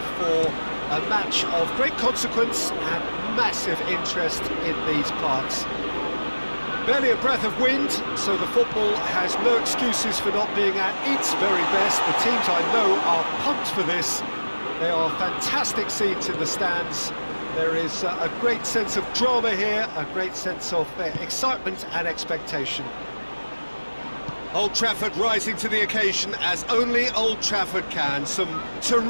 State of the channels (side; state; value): both; inverted; correlation -1.00